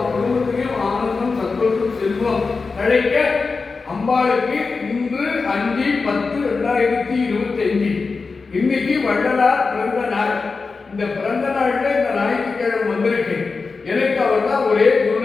குடும்பத்திலையும் ஆனந்தம், சந்தோஷம், செல்வம் கிடைக்க அம்பாளுக்கு இன்று 5/10/2025 இன்னைக்கு வள்ளலார் பிறந்த நாள். இந்த பிறந்த நாள்ல இந்த ஞாயிற்றுக்கிழமை வந்திருக்கேன். எனக்கு அவர் தான் ஒரே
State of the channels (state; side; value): quieter; right; 4.4 dB